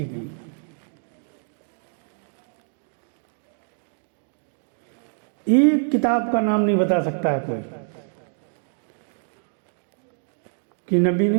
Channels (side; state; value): left; silent; digital silence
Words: گئی. ایک کتاب کا نام نہیں بتا سکتا ہے کوئی کہ نبی